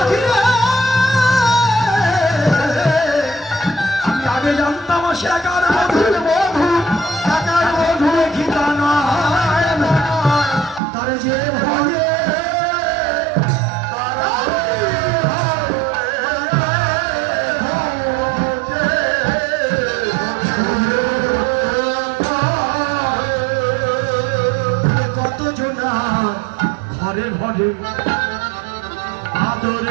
জানতাম সে একার বধূ গীতা নয়, তার যে ভয়ে কত জনা ঘরে ঘরে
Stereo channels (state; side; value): drops out; left; at 10.8 s